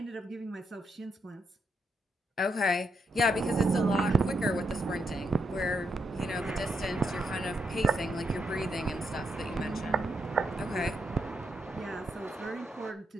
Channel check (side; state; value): both; normal; correlation 0.80